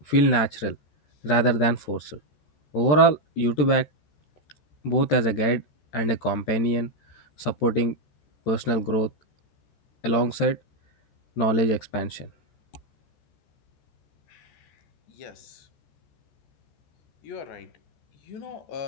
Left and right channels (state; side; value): late; right; 13 ms